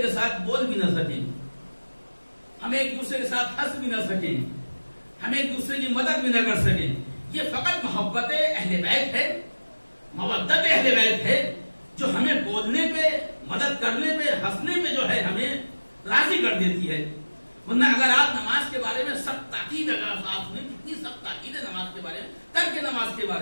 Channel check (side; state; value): both; inverted; correlation -1.00